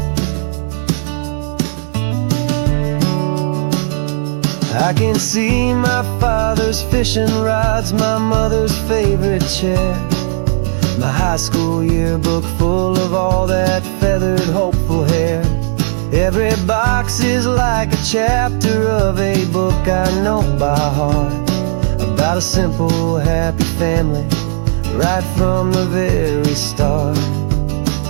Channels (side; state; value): left; silent; digital silence